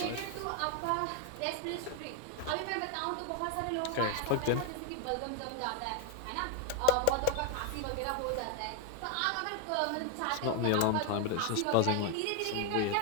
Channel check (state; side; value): different; both; correlation 0.01